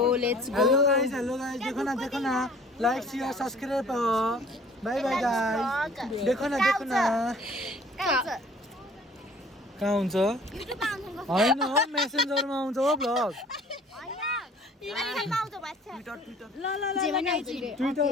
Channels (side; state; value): both; normal; correlation 0.52